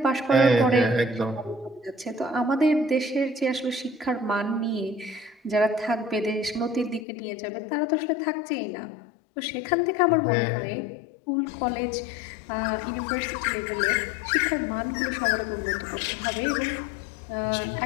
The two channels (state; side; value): drops out; right; at 7.1 s